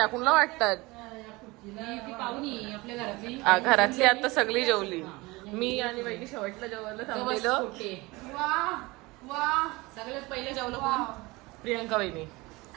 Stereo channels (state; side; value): quieter; left; 22.7 dB